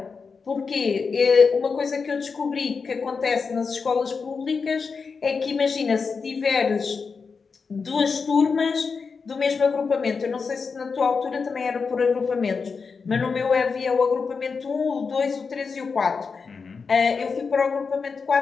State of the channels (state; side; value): quieter; right; 5.1 dB